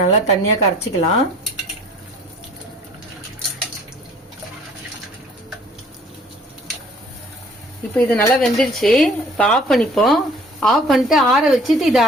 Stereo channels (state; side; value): normal; both; correlation 0.54